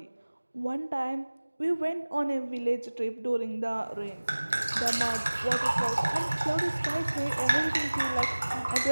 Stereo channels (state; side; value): inverted; both; correlation -1.00